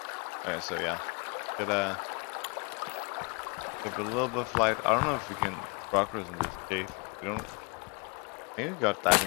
Okay, so yeah, get a little bit of light. I don't know if we can progress in this cave. We don't. Maybe we got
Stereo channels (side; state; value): right; quieter; 33.0 dB